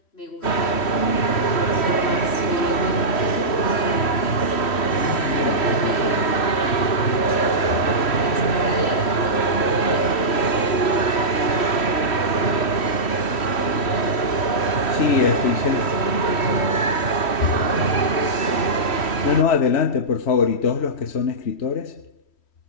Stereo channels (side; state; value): right; late; 3.1 ms